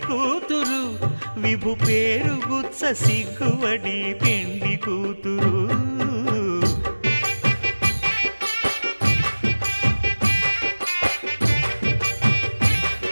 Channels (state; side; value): inverted; both; correlation -1.00